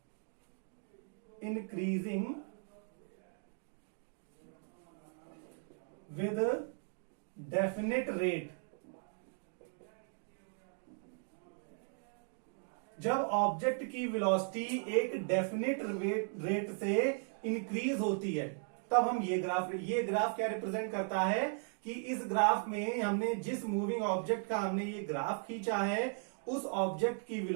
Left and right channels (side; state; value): left; silent; 53 dB below the other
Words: इंक्रीजिंग विद डेफिनेट रेट। जब ऑब्जेक्ट की वेलोसिटी एक डेफिनेट रेट से इंक्रीज होती है तब हम ये ग्राफ क्या रिप्रेजेंट करता है कि इस ग्राफ में हमने जिस मूविंग ऑब्जेक्ट का हमने ये ग्राफ खींचा है उस ऑब्जेक्ट की